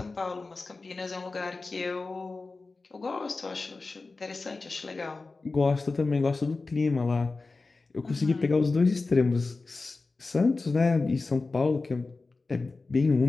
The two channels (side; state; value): right; quieter; 3.7 dB